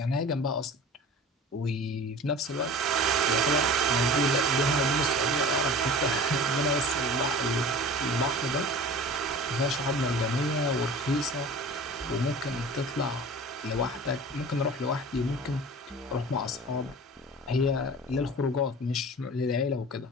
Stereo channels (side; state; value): both; normal; correlation 0.39